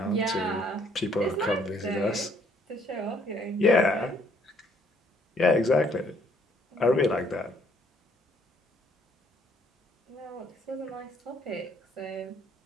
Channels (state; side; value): normal; both; correlation 0.65